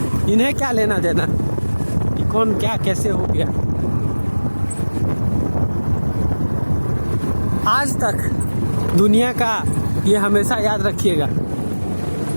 इन्हें क्या लेना देना कि कौन क्या कैसे हो गया। आज तक दुनिया का ये हमेशा याद रखिएगा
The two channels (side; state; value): both; inverted; correlation -1.00